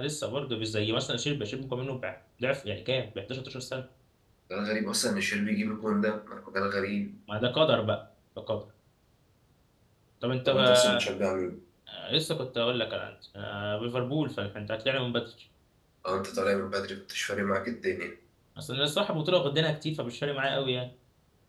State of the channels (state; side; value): identical; both; correlation 1.00